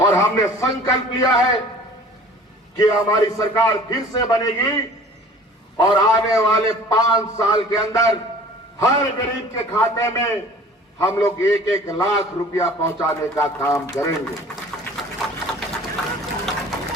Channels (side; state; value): both; normal; correlation 0.47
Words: हमने संकल्प लिया है कि हमारी सरकार फिर से बनेगी और आने वाले 5 साल के अंदर हर गरीब के खाते में हम लोग 1-1 लाख रुपया पहुंचाने का काम करेंगे।